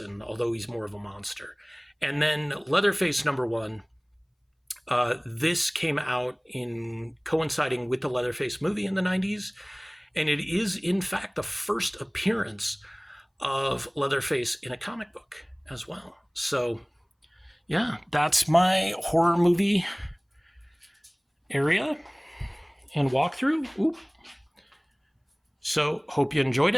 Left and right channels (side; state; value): both; identical; correlation 1.00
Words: although he's more of a monster. And then Leatherface #1. This came out in coinciding with the Leatherface movie in the 90s. And it is, in fact, the first appearance of Leatherface in a comic book as well. So, yeah, that's my horror movie area and walkthrough. Oop. So, hope you enjoyed